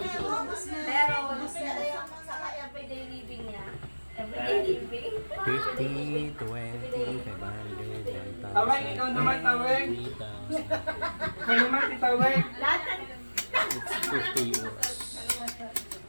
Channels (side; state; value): both; inverted; correlation -1.00